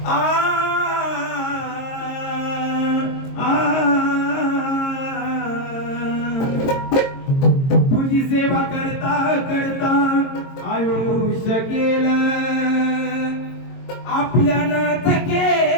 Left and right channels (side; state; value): right; late; 22 ms